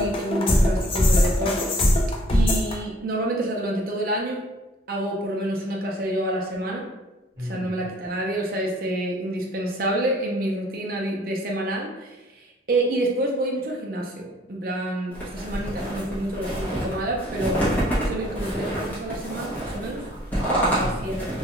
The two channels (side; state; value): both; normal; correlation 0.57